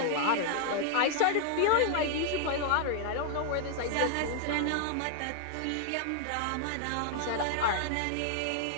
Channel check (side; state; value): both; different; correlation 0.00